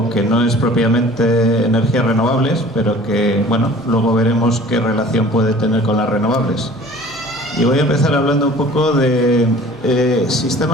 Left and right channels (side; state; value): both; normal; correlation 0.47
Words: que no es propiamente energías renovables, pero que, bueno, luego veremos qué relación puede tener con las renovables. Y voy a empezar hablando un poco de